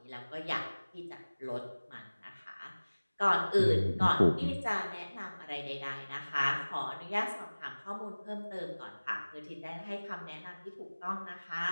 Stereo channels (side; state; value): both; inverted; correlation -1.00